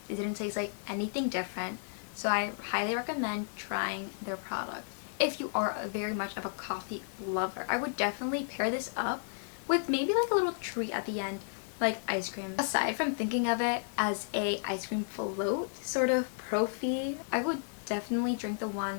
It didn't taste like anything different. So I highly recommend trying their product. If you are very much of a coffee lover, I would definitely pair this up with maybe like a little treat at the end, like ice cream. Aside from thinking of it as a ice cream float sort of proffee, I would definitely drink the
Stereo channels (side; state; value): right; silent; digital silence